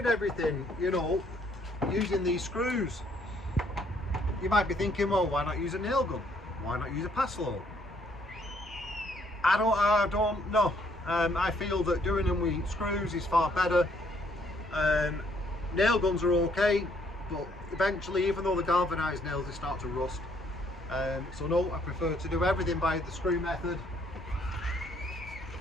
everything, you know, using these screws. You might be thinking, well, why not use a nail gun? Why not use a Paslode? I don't know. I feel that doing them with screws is far better. Nail guns are okay, but eventually, even though they're galvanized nails, they start to rust. So no, I prefer to do everything by the screw method.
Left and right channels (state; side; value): normal; both; correlation 0.67